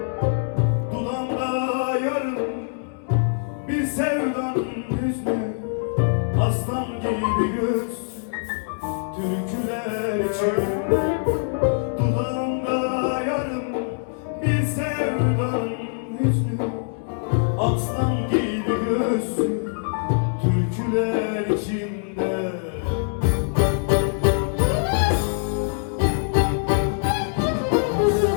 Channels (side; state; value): right; silent; digital silence